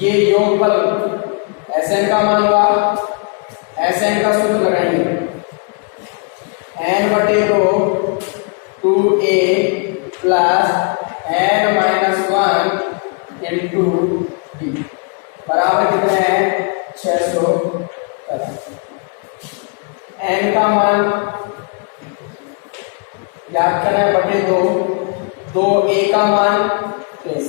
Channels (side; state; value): right; quieter; 36.7 dB